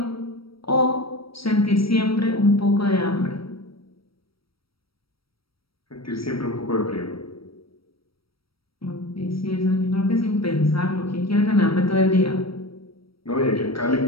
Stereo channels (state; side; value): late; right; 0.75 ms